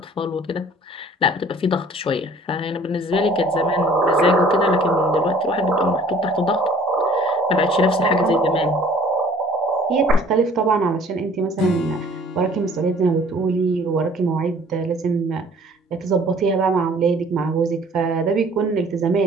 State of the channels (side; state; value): both; normal; correlation 0.53